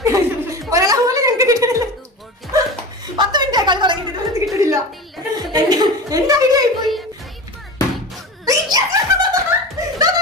ഒരാളെ പോലെ ഞങ്ങൾക്ക് കിട്ടണില്ല 10 മിനിറ്റ് കളി തുടങ്ങിയിട്ട് കിട്ടണില്ല എന്റെ ഐഡിയ ആയിപ്പോയി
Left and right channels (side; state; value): both; normal; correlation 0.30